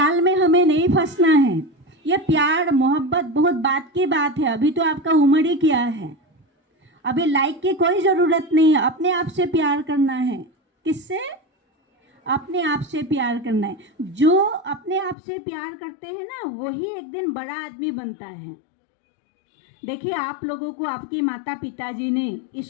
में हमें नहीं फंसना है। ये प्यार मोहब्बत बहुत बात की बात है। अभी तो आपका उम्र ही क्या है, अभी लाइक की कोई ज़रूरत नहीं है। अपने आप से प्यार करना है। किससे? अपने आप से प्यार करना है। जो अपने आप से प्यार करते हैं ना, वही एक दिन बड़ा आदमी बनता है। देखिए, आप लोगों को आपकी माता पिताजी ने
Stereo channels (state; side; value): drops out; right; at 15.2 s